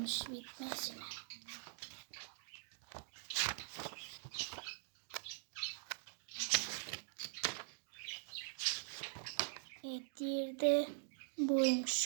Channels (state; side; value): silent; left; digital silence